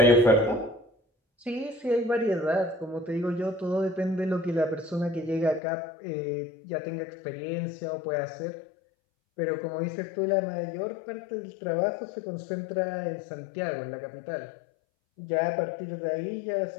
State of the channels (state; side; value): drops out; right; at 5.6 s